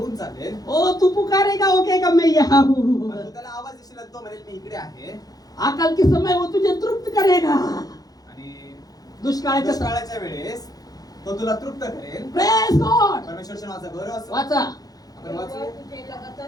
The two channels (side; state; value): right; late; 0.18 ms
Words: चालेल. ओ तू पुकारेगा वो कहेगा मैं यहाँ हूँ. पण तू त्याला आवाज देशील आणि तो म्हणेल मी इकडे आहे. आकल के समय वो तुझे तृप्त करेगा. आणि दुष्काळाच्या दुष्काळाच्या वेळेस तो तुला तृप्त करेल. Praise God. परमेश्वरच्या नावाचा गौरव असो. वाचा. आपण वाचूया. तुझे लगातार